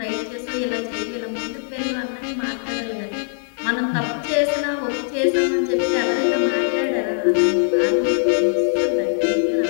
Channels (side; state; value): right; silent; digital silence